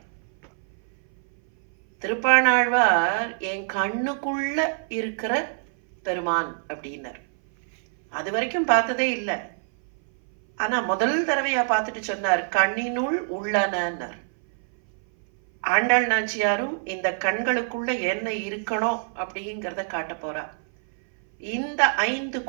திருப்பாணாழ்வார் என் கண்ணுக்குள்ள இருக்கிற பெருமான் அப்படின்னர். அது வரைக்கும் பார்த்ததே இல்லை. ஆனா முதல் தடவையா பார்த்துட்டு சொன்னார், கண்ணினுள் உள்ளனர். ஆண்டாள் நாச்சியாரும் இந்த கண்களுக்குள்ள என்ன இருக்கணும் அப்படிங்கிறத காட்ட போறா. இந்த 5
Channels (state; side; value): silent; left; 59 dB below the other